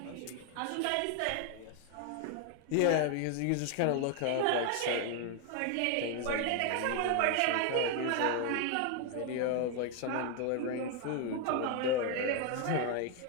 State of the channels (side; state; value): both; different; correlation 0.01